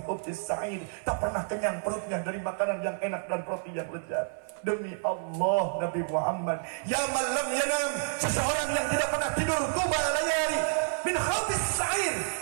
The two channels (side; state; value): left; silent; 56 dB below the other